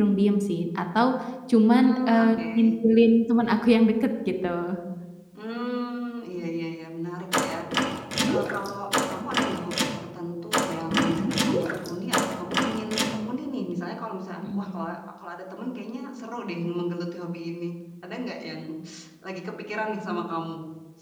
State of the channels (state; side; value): identical; both; correlation 1.00